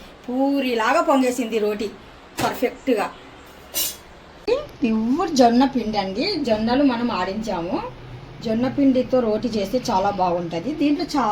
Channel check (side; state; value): both; identical; correlation 1.00